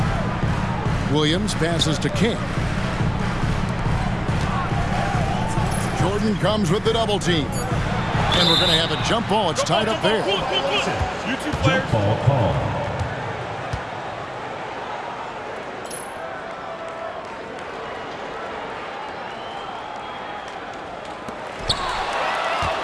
Williams passes to King. Jordan comes with the double team. And we're going to have a jump ball. It's tied up there. You two Jump players. ball call.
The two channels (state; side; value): identical; both; correlation 1.00